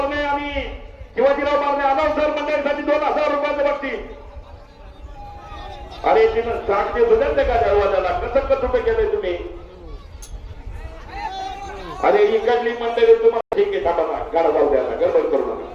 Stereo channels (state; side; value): identical; both; correlation 1.00